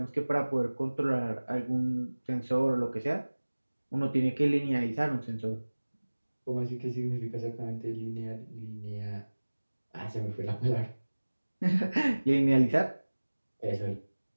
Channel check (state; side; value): inverted; both; correlation -1.00